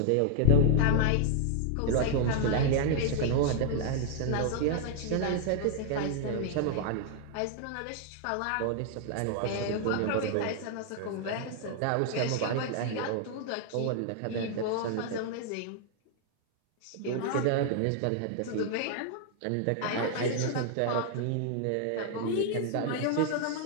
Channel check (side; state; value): both; different; correlation 0.00